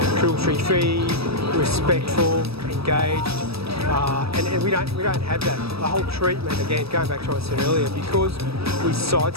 cruelty-free, respectful, engaged, and we don't have that. The whole treatment, again, going back to what I said earlier, because we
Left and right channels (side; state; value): left; late; 0.77 ms